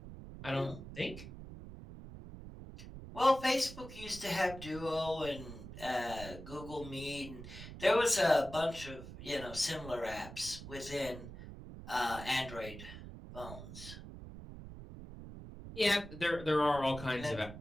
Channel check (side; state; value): right; noise; rumble, 12 dB below the sound